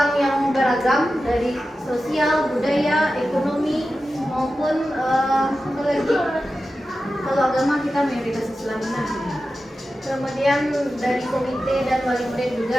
yang beragam dari sosial, budaya, ekonomi maupun kalau agama kita mayoritas Islam. Kemudian dari komite dan wali murid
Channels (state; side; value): normal; both; correlation 0.93